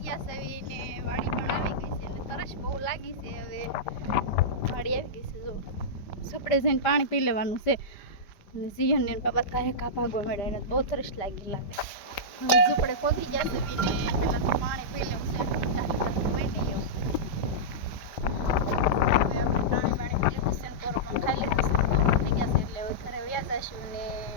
ગયા છે ને વાડી પણ આવી ગઈ છે એટલે તરસ બહુ લાગી છે. હવે વાડી આવી ગઈ છે, જો ઝૂંપડે જઈને પાણી પી લેવાનું છે. અને જીહન ને બાબા કાંઈ કા ભાગવા મળે, એને બહુ તરસ લાગે. હવે ઝૂંપડે પહોંચી ગયા છે ને પેલા તો પાણી પી લેવું છે.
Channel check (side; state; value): right; late; 5.1 ms